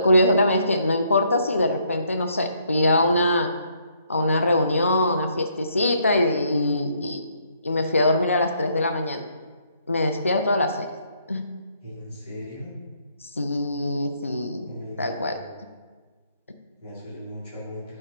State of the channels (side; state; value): both; inverted; correlation -0.69